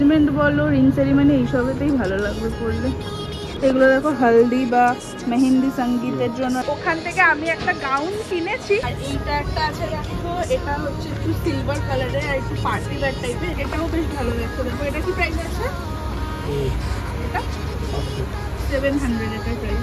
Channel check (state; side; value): identical; both; correlation 1.00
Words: বলো, রিং সেরিমনি এইসবেতেই ভালো লাগবে পরলে। এগুলো দেখো হলদি বা মেহেন্দি সঙ্গীতের জন্য। ওখান থেকে আমি একটা গাউন কিনেছি, আর এইটা একটা আছে দেখো, এটা হচ্ছে একটু সিলভার কালারের আর একটু পার্টি ওয়্যার টাইপের, এটাও বেশ ভালো লাগছে। দেখো এটা কি প্রাইস আছে? এটা 700 এটার